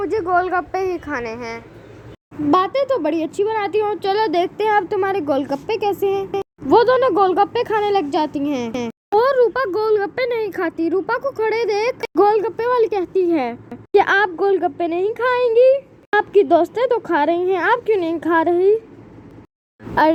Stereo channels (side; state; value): both; identical; correlation 1.00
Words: गोलगप्पे ही खाने हैं। बातें तो बड़ी अच्छी बनाती हो, चलो देखते हैं अब तुम्हारे गोलगप्पे कैसे हैं। वो दोनों गोलगप्पे खाने लग जाती हैं और रूपा गोलगप्पे नहीं खाती। रूपा को खड़े देख गोलगप्पे वाली कहती है कि आप गोलगप्पे नहीं खाएंगी, आपकी दोस्तें तो खा रही हैं, आप क्यों नहीं खा रही?